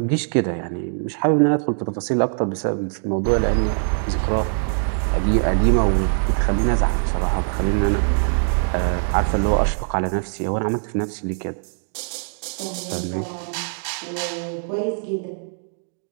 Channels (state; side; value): silent; left; digital silence